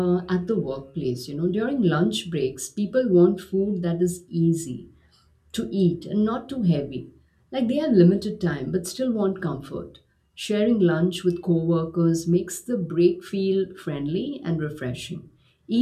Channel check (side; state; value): both; identical; correlation 1.00